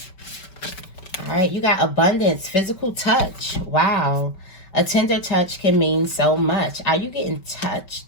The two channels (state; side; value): late; right; 5.2 ms